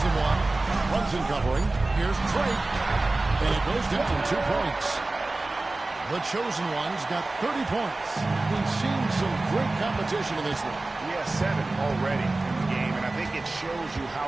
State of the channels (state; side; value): quieter; left; 3.1 dB